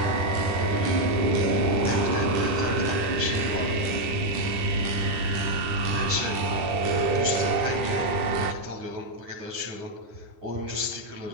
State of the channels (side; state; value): left; late; 10 ms